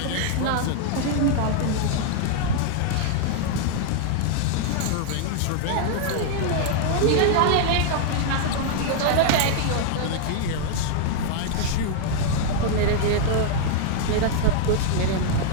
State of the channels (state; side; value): different; both; correlation 0.00